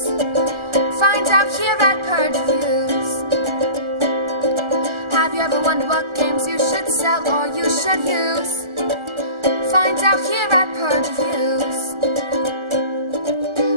Find out here at Purge Reviews. Have you ever wondered what games you should sell or you should use? Find out here at Purge Reviews.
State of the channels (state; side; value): late; left; 1.4 ms